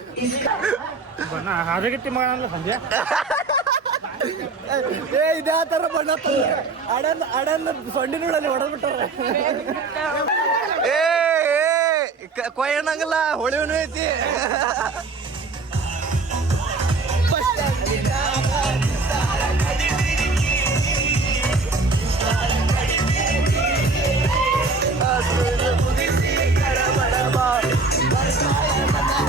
ಬಳ ಹಾದಗಟ್ಟಿ ಮಗನಲ್ಲ ಸಂಜೆ ಏ ಇದೇ ಆ ಥರ ಬಣ್ಣ ಅಡನ್ ಸೊಂಡಿ ನೋಡಲ್ಲಿ ಹೊಡೆದ್ಬಿಟ್ಟಾರ ಏ ಕೊಯ್ಯಣಂಗಲ್ಲ ಹೊಳಿವನು ಐತಿ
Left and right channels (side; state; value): left; quieter; 3.9 dB